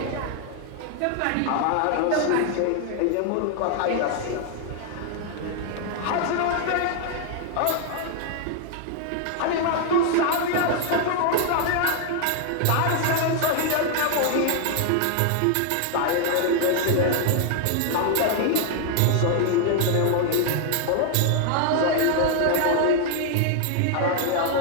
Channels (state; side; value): different; both; correlation 0.00